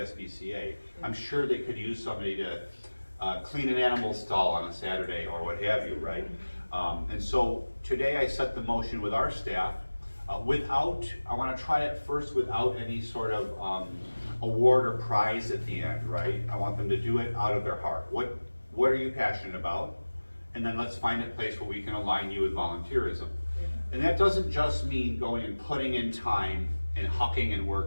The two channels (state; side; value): inverted; both; correlation -1.00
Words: I'm sure they could use somebody to clean an animal stall on a Saturday or what have you, right? And so today I set the motion with our staff I want to try it first without any sort of award or prize at the end, right? I want them to do it out of their heart. What are you passionate about? And then let's find a place where we can align you with volunteerism. And that doesn't just mean going and putting in time and hucking and